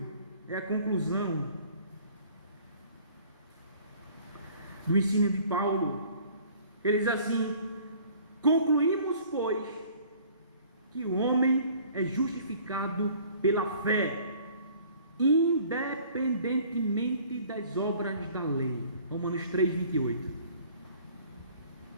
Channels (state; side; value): inverted; both; correlation -0.52